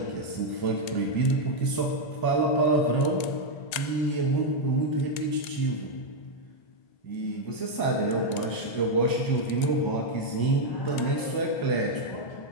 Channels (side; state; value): right; late; 1.8 ms